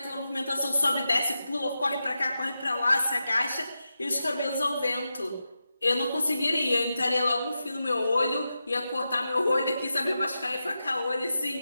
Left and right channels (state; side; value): inverted; both; correlation -0.90